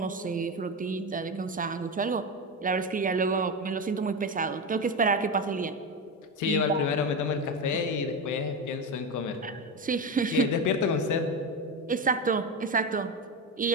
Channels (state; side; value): normal; both; correlation 0.16